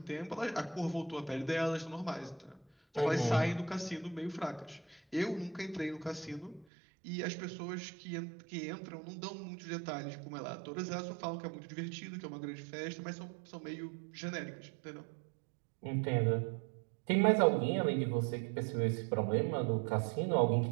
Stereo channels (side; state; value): left; drops out; at 6.7 s